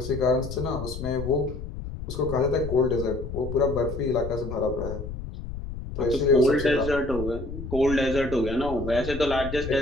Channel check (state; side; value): noise; left; rumble, 8 dB below the sound